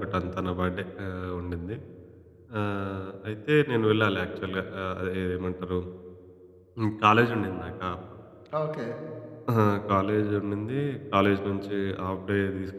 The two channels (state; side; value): identical; both; correlation 1.00